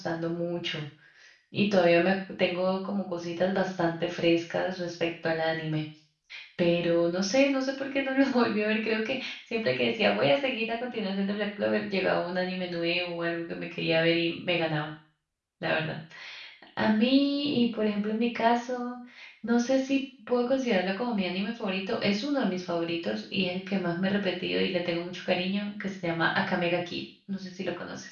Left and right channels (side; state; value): both; identical; correlation 1.00